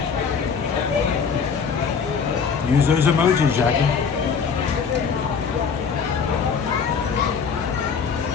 Use those emojis, Jackie.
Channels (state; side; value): quieter; right; 6.1 dB